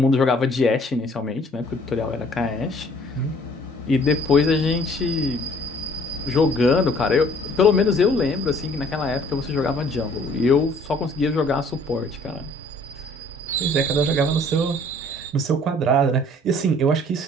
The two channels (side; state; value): both; normal; correlation 0.57